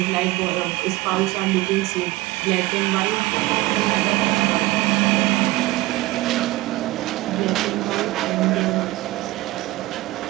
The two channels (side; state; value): left; quieter; 18.9 dB